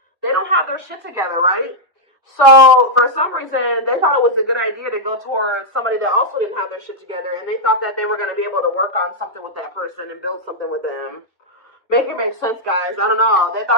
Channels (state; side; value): normal; both; correlation -0.04